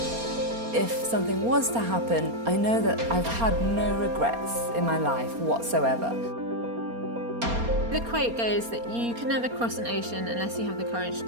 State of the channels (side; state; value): left; late; 4.3 ms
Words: If something was to happen, I know that I've had no regrets in my life whatsoever. The quote goes that you can never cross an ocean unless you have the courage